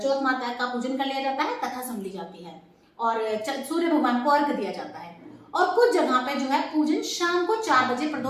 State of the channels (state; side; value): identical; both; correlation 1.00